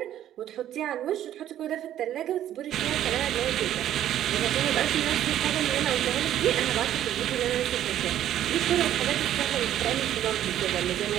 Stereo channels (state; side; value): quieter; left; 11.7 dB